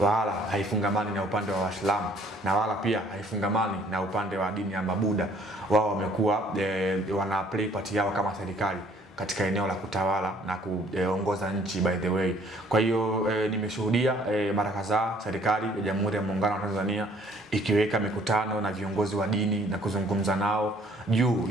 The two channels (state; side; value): normal; both; correlation 0.60